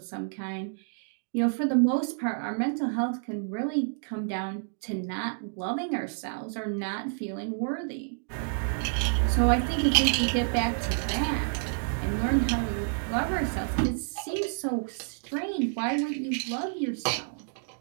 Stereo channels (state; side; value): silent; left; digital silence